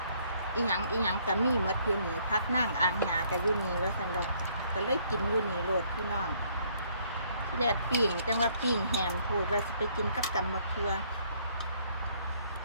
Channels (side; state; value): both; inverted; correlation -0.66